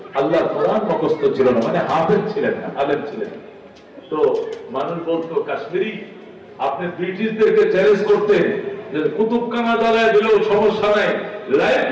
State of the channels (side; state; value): both; identical; correlation 1.00